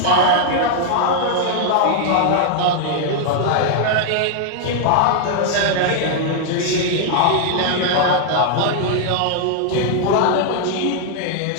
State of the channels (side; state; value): both; different; correlation 0.00